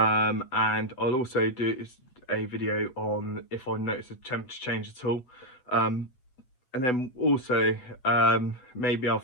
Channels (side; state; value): right; late; 8.0 ms